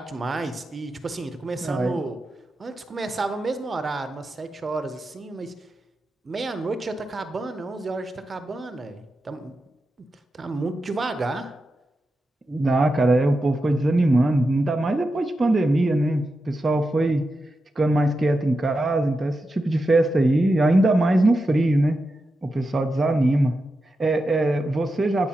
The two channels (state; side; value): normal; both; correlation 0.89